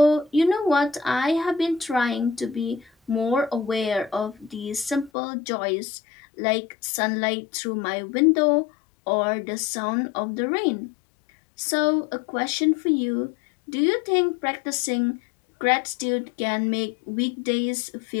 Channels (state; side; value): drops out; right; at 5.1 s